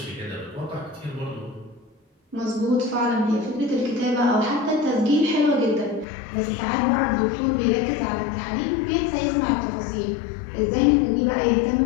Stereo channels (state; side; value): drops out; right; at 6.1 s